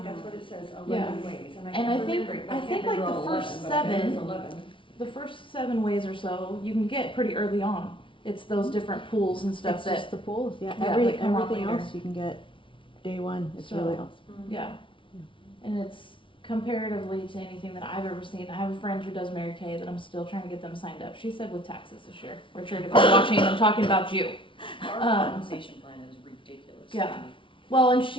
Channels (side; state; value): right; late; 0.25 ms